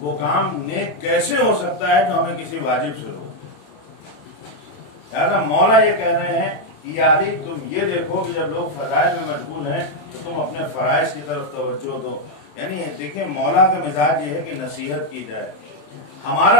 کام نیک کیسے ہو سکتا ہے جو ہمیں کسی واجب سے روکے. لہٰذا مولا یہ کہہ رہے ہیں کہ یا علی تم یہ دیکھو کہ جب لوگ فضائل میں مشغول ہیں تو تم اپنے فرائض کی طرف توجہ دو. یعنی دیکھیں مولا کا مزاج یہ ہے کہ نصیحت کی جائے،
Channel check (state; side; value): late; right; 27 ms